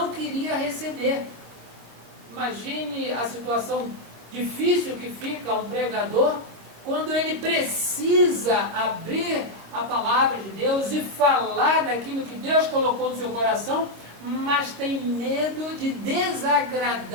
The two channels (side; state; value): left; late; 25 ms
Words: queria receber. Imagine a situação difícil que fica um pregador quando ele precisa abrir a palavra de Deus e falar daquilo que Deus colocou no seu coração, mas tem medo de